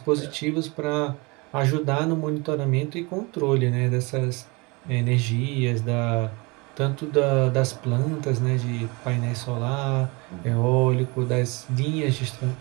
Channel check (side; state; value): left; quieter; 27.0 dB